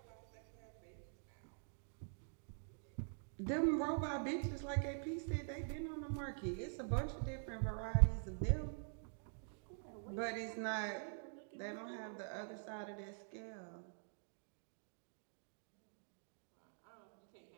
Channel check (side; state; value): left; silent; digital silence